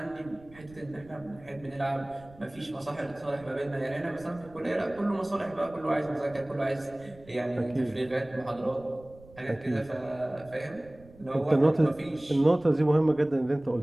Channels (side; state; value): right; noise; rumble, 22 dB below the sound